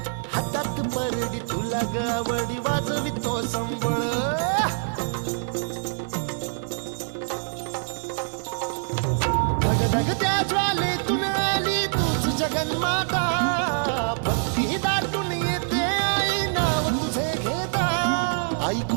हातात परडी तुला गावडी वाजवी तो संबळ. धगधग त्या ज्वालेतून आली तूच जगन्माता, भक्ती दाटून येते आई नाव तुझे घेता. आई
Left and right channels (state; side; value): silent; left; 62 dB below the other